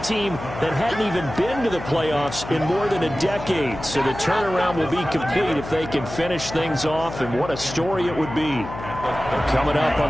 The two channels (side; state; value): left; noise; hum, 11 dB below the sound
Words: team that hadn't even been to the playoffs in more than a decade. So the turnaround will be complete if they can finish things off, and what a story it would be. Coming up on